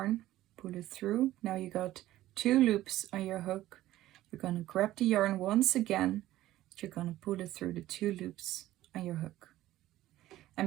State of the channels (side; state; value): left; quieter; 14.9 dB